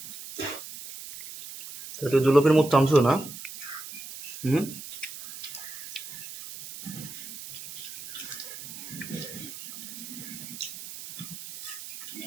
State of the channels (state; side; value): noise; right; hiss, 11 dB below the sound